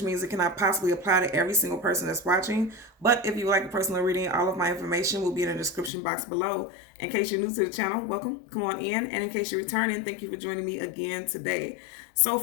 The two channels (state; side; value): drops out; right; at 5.9 s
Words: means it cannot possibly apply to every single person that's watching. But if you would like a personal reading, all of my information will be in the description box below. In case you're new to the channel, welcome, come on in. And in case you're returning, thank you for joining me again today. So